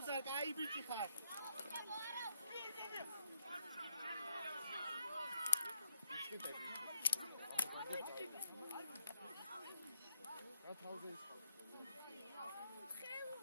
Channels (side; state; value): both; inverted; correlation -0.79